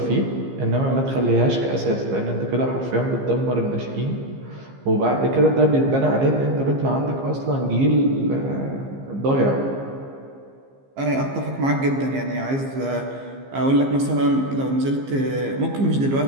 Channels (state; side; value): late; left; 15 ms